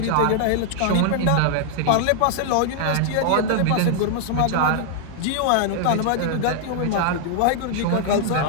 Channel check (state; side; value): different; both; correlation 0.00